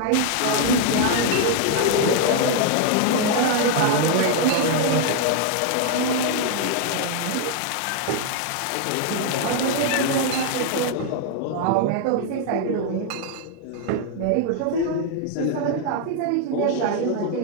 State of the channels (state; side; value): different; both; correlation 0.00